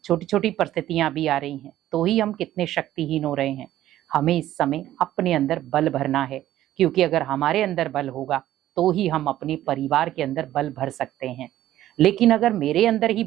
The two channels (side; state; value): left; quieter; 13.4 dB